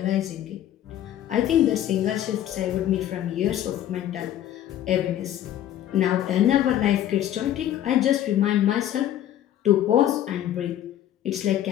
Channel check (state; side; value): quieter; right; 11.8 dB